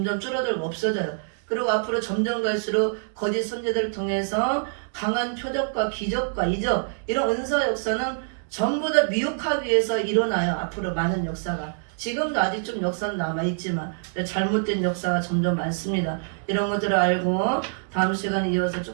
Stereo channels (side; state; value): left; silent; digital silence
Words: 줄어들고 없어져요. 그리고 앞으로 점점 갈수록 거짓 선지자들을 통해서 강한 표적과 기적과 이적 이런 은사 역사는 전부 다 미혹하기 위해서 일어나요. 앞으로 많은 역사가. 지금도 아직 좀 역사는 남아있지만 잘못된 역사가 점점 많습니다. 이런 것들을 알고 다음 시간에 이어서